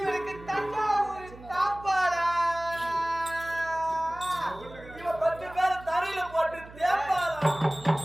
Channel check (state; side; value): noise; right; hum, 18 dB below the sound